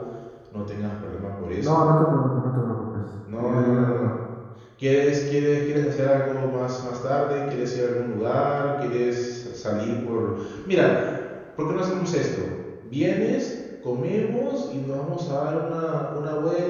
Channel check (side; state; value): both; identical; correlation 1.00